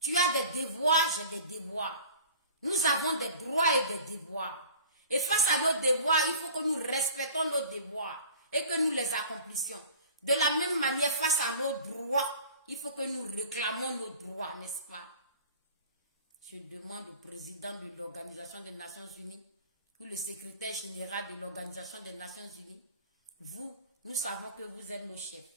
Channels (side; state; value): both; inverted; correlation -0.44